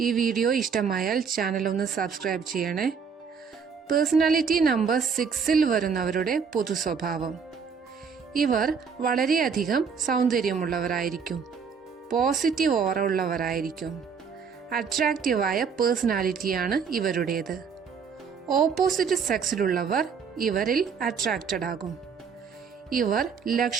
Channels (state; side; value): quieter; left; 6.1 dB